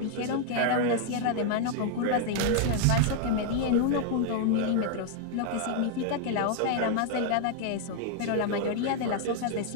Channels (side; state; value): both; different; correlation 0.00